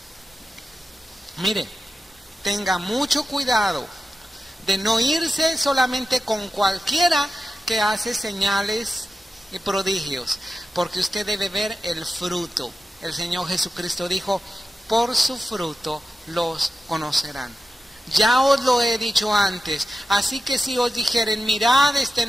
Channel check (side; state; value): both; normal; correlation 0.92